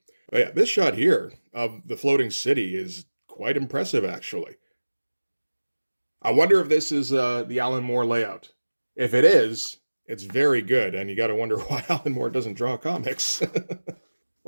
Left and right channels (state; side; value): inverted; both; correlation -1.00